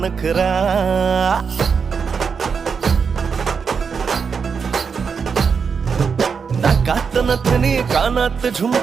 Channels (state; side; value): quieter; left; 5.9 dB